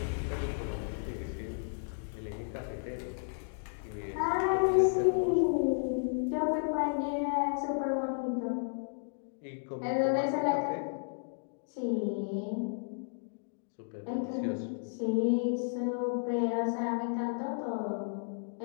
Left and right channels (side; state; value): right; silent; digital silence